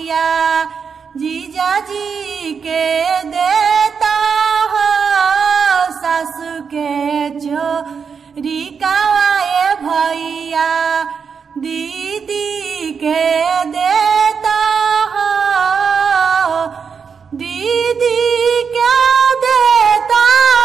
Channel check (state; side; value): quieter; left; 6.1 dB